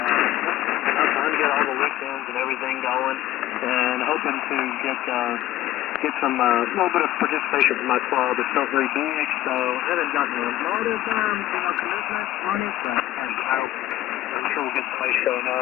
I'm trying to get all the weekends and everything going, and hoping to get some little bit of participation from my club. It's not very big, so I haven't gotten a lot of commitment on it, but I'm sure we'll get somebody showing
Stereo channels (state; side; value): quieter; right; 14.6 dB